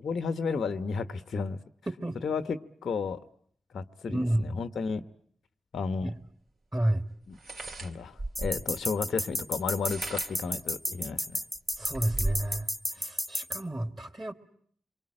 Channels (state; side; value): normal; both; correlation 0.89